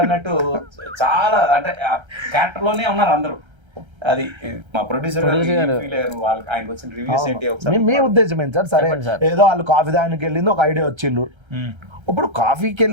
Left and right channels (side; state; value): left; late; 1.3 ms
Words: అన్నట్టు చాలా అంటే క్యారెక్టర్ లోనే ఉన్నారు అందరూ. అది మా ప్రొడ్యూసర్ వాళ్ళకి ఆయనకు వచ్చిన రివ్యూస్ ఏంటి మీ ఉద్దేశం ఏంటి సార్? సరే ఏదో వాళ్ళు కాఫీ దానికి వెళ్ళింది ఒక ఐడియా వచ్చిండు, ఇప్పుడు కాఫీకి